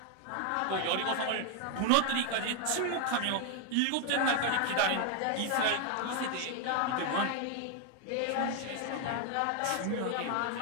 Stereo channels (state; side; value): different; both; correlation 0.00